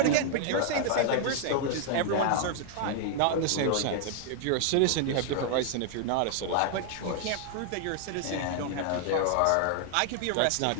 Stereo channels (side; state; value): both; different; correlation 0.00